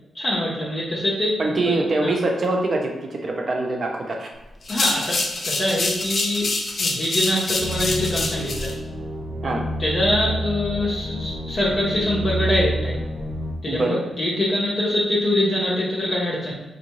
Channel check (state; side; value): normal; both; correlation 0.84